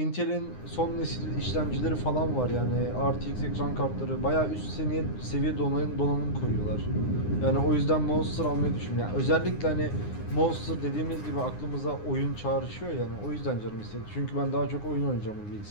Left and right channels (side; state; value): right; late; 9.7 ms